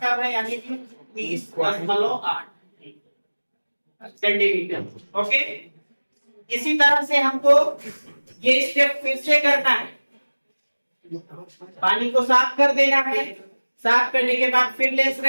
कम है, यानी कि 30.8 सेंटीमीटर। ओके, इसी तरह से हमको ये स्टेप फिर से करना है। पानी को साफ कर देना है, साफ करने के बाद फिर लेंस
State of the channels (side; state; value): both; inverted; correlation -1.00